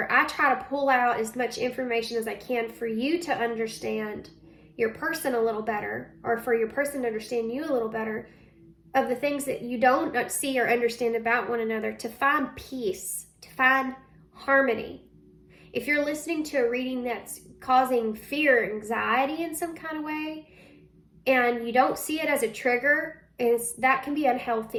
I try to pull out as much information as I can for you to understand your person a little better, or for your person to understand you a little better, of the things that you don't see or understand about one another, to find peace, to find harmony. If you're listening to a reading that's causing fear or anxiety in some kind of way, and you don't see it as a trigger, that can be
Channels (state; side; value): identical; both; correlation 1.00